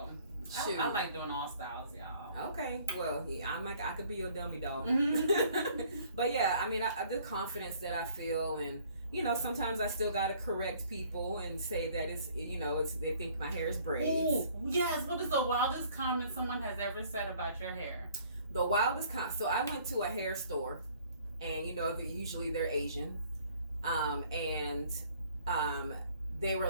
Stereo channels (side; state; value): both; inverted; correlation -0.58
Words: I like doing all styles, y'all. Okay, well, I could be your dummy doll. But yeah, I mean, the confidence that I feel, and sometimes I still gotta correct people and say that it's they think my hair is braids. Ooh, yes. What is the wildest comment someone has ever said about your hair? The wildest comment. So I went to a hair store, and usually they're Asian, and they were